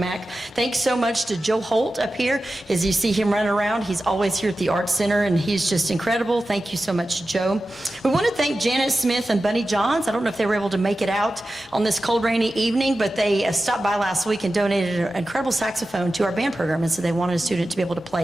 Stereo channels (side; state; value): both; normal; correlation 0.93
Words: Thanks so much to Joe Holt up here. As you see him running around, he's always here at the Arts Center, and he's just incredible. Thank you so much, Joe. We want to thank Janet Smith and Bunny Johns. I don't know if they were able to make it out on this cold, rainy evening, but they stopped by last week and donated an incredible saxophone to our band program, and so they wanted a student to be able to